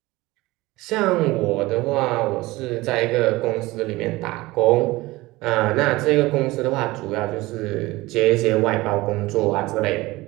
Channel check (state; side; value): quieter; left; 20.1 dB